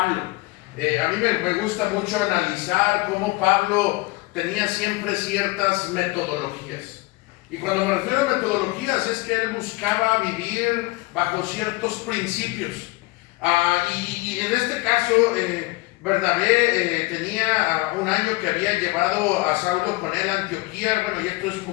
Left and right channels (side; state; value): right; quieter; 22.5 dB